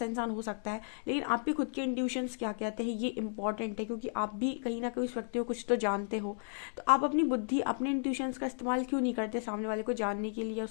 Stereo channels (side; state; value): right; silent; digital silence